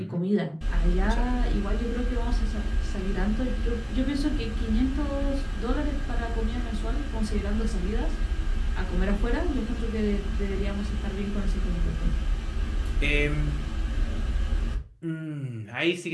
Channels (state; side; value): identical; both; correlation 1.00